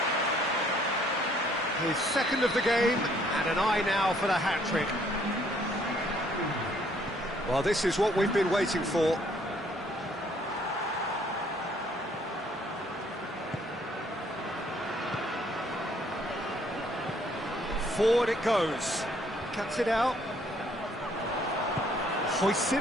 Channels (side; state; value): both; normal; correlation 0.64